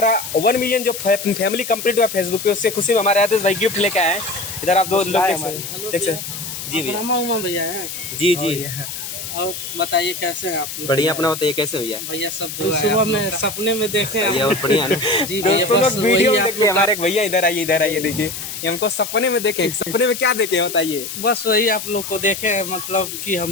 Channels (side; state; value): left; noise; hiss, 8 dB below the sound